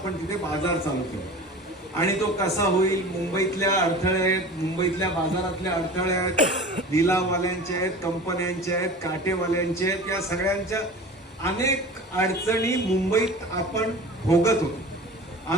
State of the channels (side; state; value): both; normal; correlation 0.37